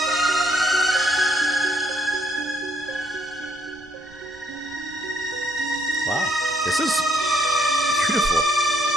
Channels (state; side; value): noise; right; rumble, 26 dB below the sound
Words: Wow, this is beautiful.